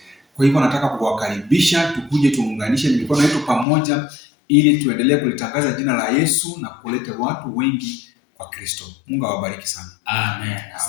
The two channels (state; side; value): drops out; right; at 3.7 s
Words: Kwa hivyo nataka kuwakaribisha, tukuje tuunganishe mikono yetu pamoja ili tuendelee kulitangaza jina la Yesu na kuleta watu wengi kwa Kristo. Mungu awabariki sana. Amen.